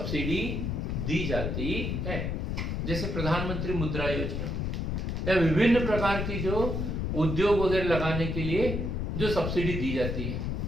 दी जाती है, जैसे प्रधानमंत्री मुद्रा योजना या विभिन्न प्रकार की जो उद्योग वगैरह लगाने के लिए जो सब्सिडी दी जाती है,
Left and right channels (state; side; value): noise; left; rumble, 1 dB below the sound